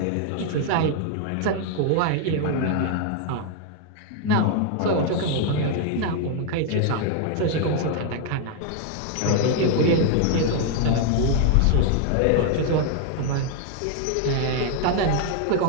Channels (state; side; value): different; both; correlation 0.00